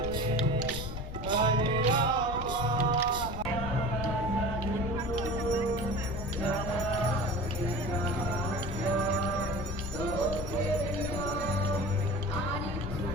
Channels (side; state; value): left; noise; rumble, 8 dB below the sound